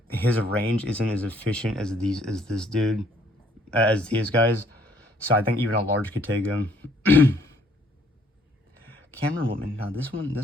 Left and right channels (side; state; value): both; normal; correlation 0.63